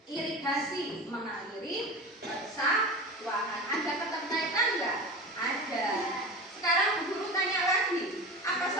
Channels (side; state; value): both; normal; correlation 0.30